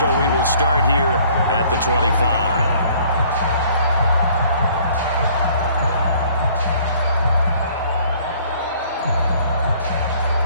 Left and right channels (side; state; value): both; inverted; correlation -0.57